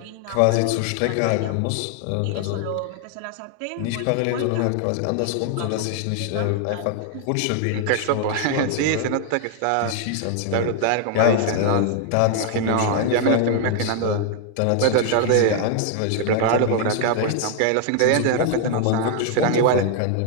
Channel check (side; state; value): both; different; correlation 0.00